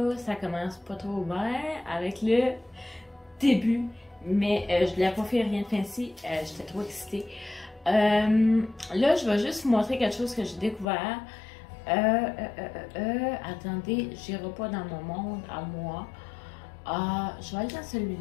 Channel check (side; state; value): right; drops out; at 10.9 s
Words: Ça commence pas trop bien avec le début, mais je voulais pas faire rien de fancy, j'étais trop excitée. Là, je vais juste vous montrer quelque chose que j'ai découvert. Attendez, j'irai pas dans mon monde à moi. Je vais aller dans